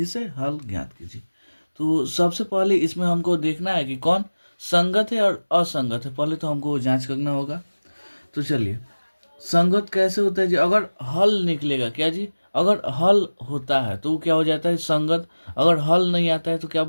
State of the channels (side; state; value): both; inverted; correlation -1.00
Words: से हल ज्ञात कीजिए। तो सबसे पहले इसमें हमको देखना है कि कौन संगत है और असंगत है। पहले तो हमको जांच करना होगा। तो चलिए, संगत कैसे होता है जी? अगर हल निकलेगा क्या जी? अगर हल होता है तो वो क्या हो जाता है? संगत। अगर हल नहीं आता है तो क्या